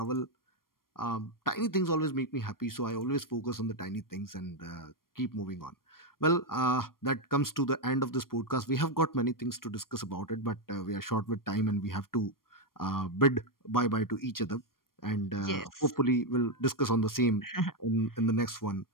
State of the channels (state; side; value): late; right; 0.92 ms